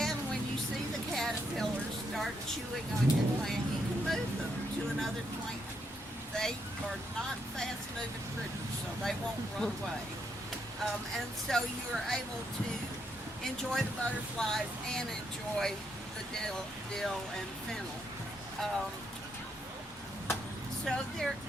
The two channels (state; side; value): normal; both; correlation 0.77